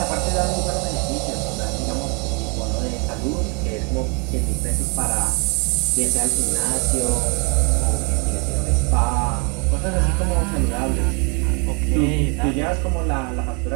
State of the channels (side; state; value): left; quieter; 34.5 dB